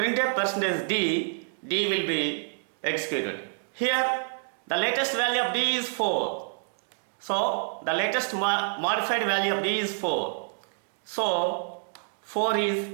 percentage D will be executed. Here the latest value of D is 4. So the latest modified value of D is 4. So 4 is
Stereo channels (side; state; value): left; silent; digital silence